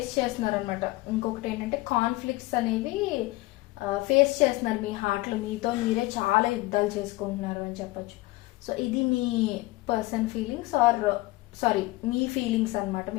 చేస్తున్నారు అనమాట. ఇంకొకటి ఏంటంటే కాన్ఫ్లిక్ట్స్ అనేవి ఫేస్ చేస్తున్నారు మీ హార్ట్లో, మీతో మీరే చాలా యుద్ధాలు చేసుకుంటున్నారు అని చెప్పొచ్చు. సో ఇది మీ పర్సన్ ఫీలింగ్స్ మీ ఫీలింగ్స్ అనమాట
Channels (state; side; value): quieter; right; 20.3 dB